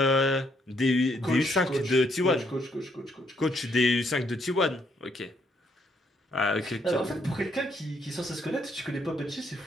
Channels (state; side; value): normal; both; correlation 0.72